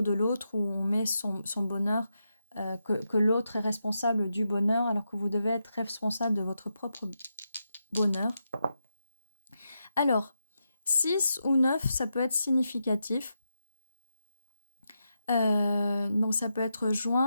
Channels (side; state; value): both; inverted; correlation -0.85